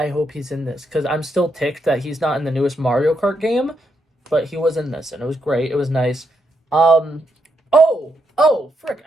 hope he's in this because I'm still ticked that he's not in the newest Mario Kart game, but he was in this, and it was great. It was nice. Um, frick!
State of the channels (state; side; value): normal; both; correlation 0.80